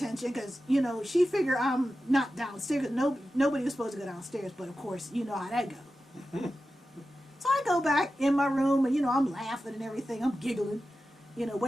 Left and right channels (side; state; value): both; normal; correlation 0.93